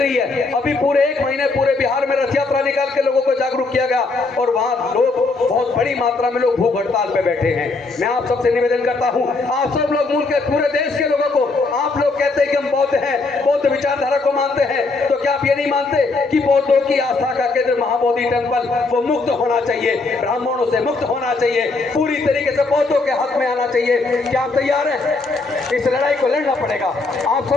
है। अभी पूरे 1 महीने पूरे बिहार में रथ यात्रा निकाल के लोगों को जागरूक किया गया और वहां लोग बहुत बड़ी मात्रा में लोग भूख हड़ताल पे बैठे हैं। मैं आप सबसे निवेदन करता हूं, आप सब लोग मुल्क के पूरे देश के लोगों को, आप लोग कहते हैं कि हम बौद्ध हैं, बौद्ध विचारधारा को मानते हैं, तो क्या आप ये नहीं मानते कि बौद्धों की आस्था का केंद्र महाबोधि टेम्पल वो मुक्त होना चाहिए, ब्राह्मणों से मुक्त होना चाहिए, पूरी तरीके से बौद्धों के हक में आना चाहिए? क्या आप तैयार हैं? इस लड़ाई को लड़ना पड़ेगा। आप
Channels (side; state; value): right; quieter; 3.7 dB